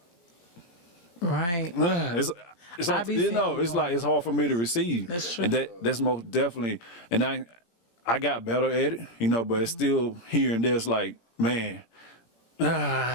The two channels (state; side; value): late; right; 17 ms